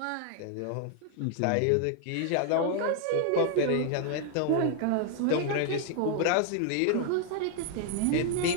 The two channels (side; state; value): both; different; correlation 0.00